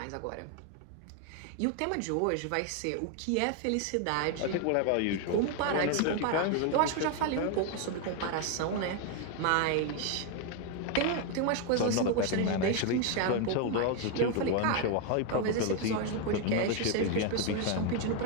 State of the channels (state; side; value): different; both; correlation 0.01